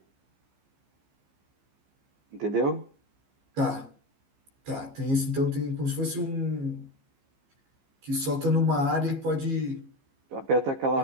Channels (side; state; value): left; late; 15 ms